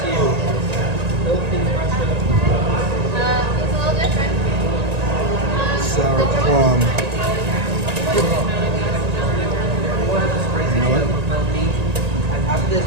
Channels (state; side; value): late; left; 1.9 ms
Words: Sour plum. You know what?